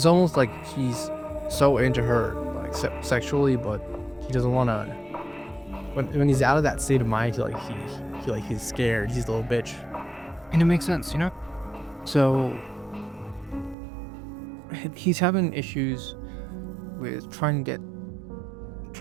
almost like he's so into her, like, sexually, but he doesn't want to. When he's out of that state of mind, he's scared. He's a little bitch, and it makes sense, you know. So he's having issues with trying to get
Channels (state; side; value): drops out; left; at 13.8 s